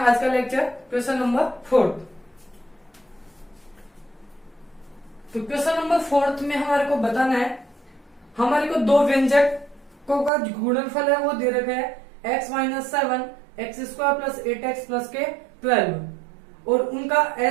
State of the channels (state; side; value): drops out; left; at 10.3 s